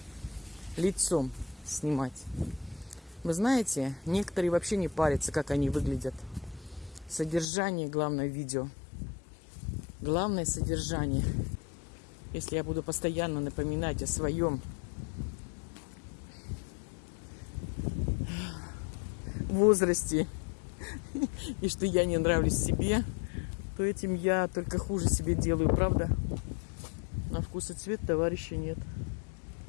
лицом снимать. Вы знаете, некоторые вообще не парятся, как они выглядят. Содержание, главное, видео. Главное содержание. Если я буду постоянно напоминать о своем возрасте и что я не нравлюсь себе, то этим я только хуже себе делаю, правда? На вкус и цвет товарища нет.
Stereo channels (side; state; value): right; drops out; at 7.5 s